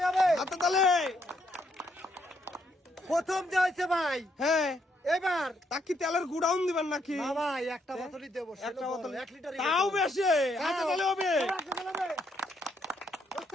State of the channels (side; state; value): both; normal; correlation 0.74